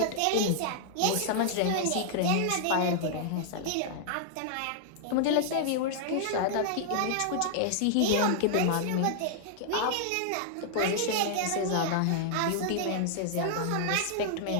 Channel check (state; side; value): different; both; correlation -0.01